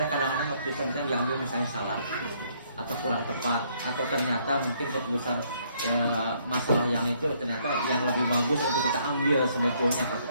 kadang-kadang keputusan kita diambil misalnya salah atau kurang tepat, atau ternyata mungkin keputusan masalah yang itu ternyata yang lebih bagus untuk kita ambil sebetulnya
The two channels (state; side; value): inverted; both; correlation -0.68